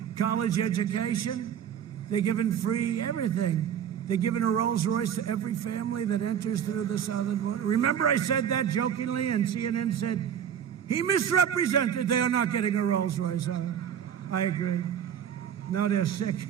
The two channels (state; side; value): quieter; left; 8.8 dB